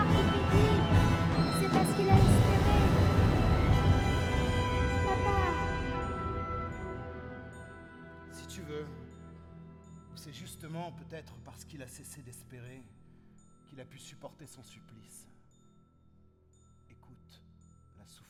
qui fait vivre. C'est parce qu'il a espéré. Papa. Si tu veux, ou c'est justement peut-être parce qu'il a cessé d'espérer qu'il a pu supporter son supplice. Écoute la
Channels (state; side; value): identical; both; correlation 1.00